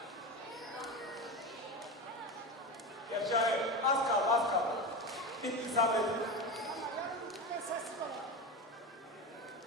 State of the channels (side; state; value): both; normal; correlation 0.22